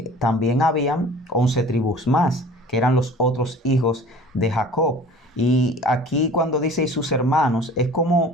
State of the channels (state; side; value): normal; both; correlation 0.45